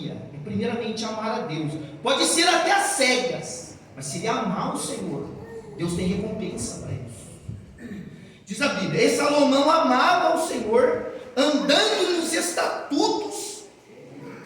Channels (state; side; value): identical; both; correlation 1.00